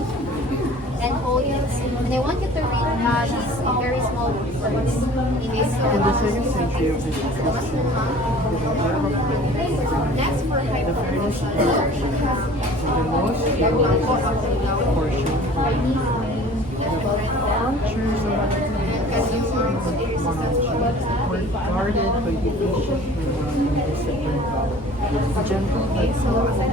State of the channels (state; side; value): normal; both; correlation 0.46